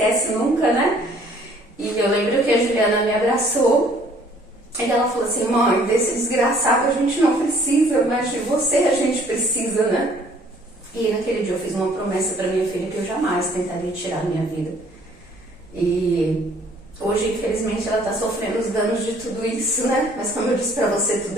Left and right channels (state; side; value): normal; both; correlation 0.58